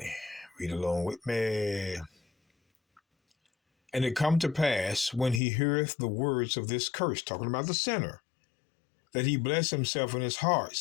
Read along with me. "And it come to pass, when he heareth the words of this curse," talking about the sinner, "that he bless himself in his heart,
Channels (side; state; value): right; drops out; at 5.4 s